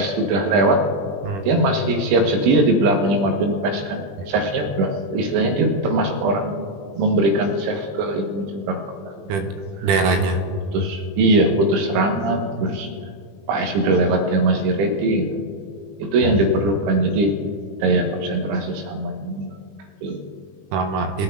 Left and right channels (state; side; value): late; left; 20 ms